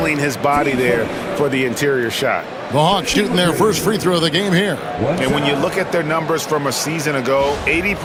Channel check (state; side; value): identical; both; correlation 1.00